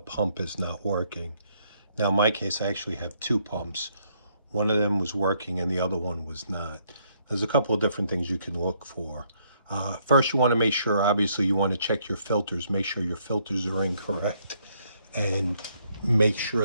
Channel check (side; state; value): both; inverted; correlation -0.71